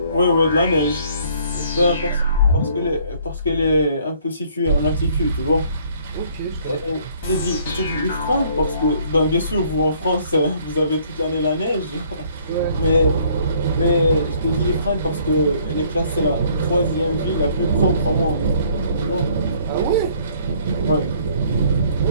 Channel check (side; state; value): both; inverted; correlation -0.61